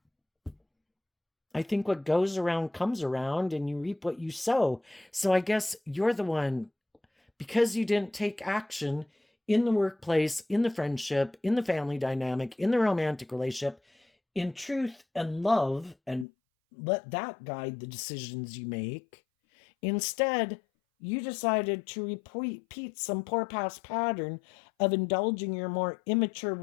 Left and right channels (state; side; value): drops out; right; at 16.2 s